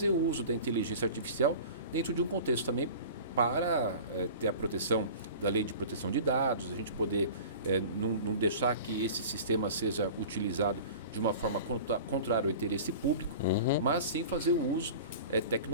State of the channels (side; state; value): both; inverted; correlation -0.38